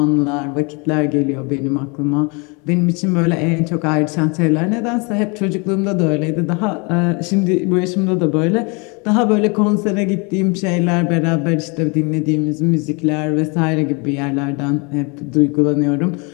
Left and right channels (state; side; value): quieter; right; 31.3 dB